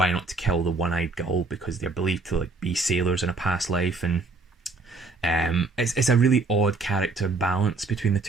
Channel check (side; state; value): left; quieter; 3.7 dB